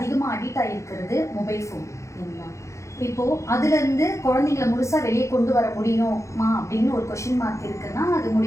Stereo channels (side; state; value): right; late; 0.14 ms